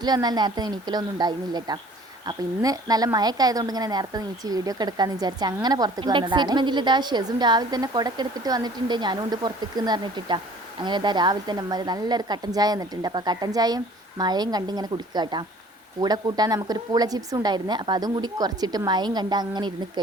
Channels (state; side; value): normal; both; correlation 0.51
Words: വന്നാൽ നേരത്തെ എണീക്കലൊന്നും ഉണ്ടായിരുന്നില്ല കേട്ടോ. അപ്പോൾ ഇന്ന് നല്ല മഴയൊക്കെ ആയതുകൊണ്ട് ഇങ്ങനെ നേരത്തെ നീച്ച് വീഡിയോ ഒക്കെ എടുക്കാമെന്ന് വിചാരിച്ച് അങ്ങനെ പുറത്തേക്ക് വന്നതാണ്. എക്സൈറ്റ്മെൻറ്റിൽ ഇതാ ഷെസും രാവിലെ തന്നെ കുടക്ക് എടുത്തിട്ട് വന്നിട്ടുണ്ട്. ഞാനും ഉണ്ട് പുറത്തേക്ക് എന്ന് പറഞ്ഞിട്ടാ. അങ്ങനെ ഇതാ രാവിലെ തന്നെ അമ്മ നല്ലൊരു കട്ടൻ ചായ വന്നിട്ടുണ്ട്. അപ്പോൾ കട്ടൻ ചായയും മഴയും കണ്ട് ഇങ്ങനെ കുടിക്കുക കേട്ടോ. കൂടെ കൂട്ടാൻ നമുക്കൊരു പൂള ചിപ്സും ഉണ്ടായിരുന്നു. അപ്പോൾ അതും കൂടി കുറച്ചിട്ട് മഴയും കണ്ട് അങ്ങനെ ഇരുന്ന്